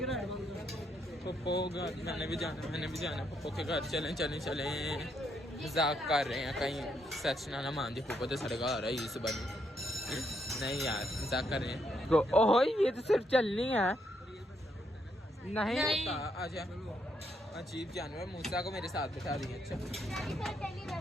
पप्पो के घर चलें मजाक कर रहे हैं कहीं सच ना मान दी पप्पो तो साढ़े घर आ रहा है इस बार नहीं यार मजाक कर रहे हैं तो ओहो ये तो सिर्फ चलनी है नहीं होता आजा अजीब जानवर मूसा को मेरे साथ बिठा दिए अच्छा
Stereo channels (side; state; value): both; normal; correlation 0.76